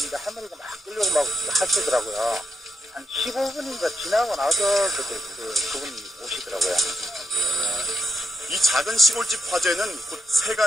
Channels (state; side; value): normal; both; correlation 0.86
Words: 할머니가 막 끌려고 막 하시더라고요. 한 15분인가 지나고 나서 그분이 오시더라고요. 이 작은 시골집 화재는 곧